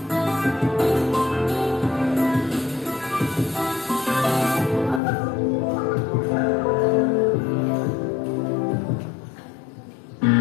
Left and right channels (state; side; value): drops out; right; at 5.0 s